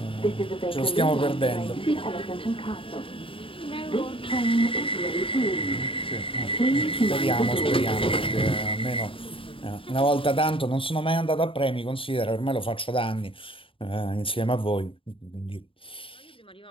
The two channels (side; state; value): right; late; 0.26 ms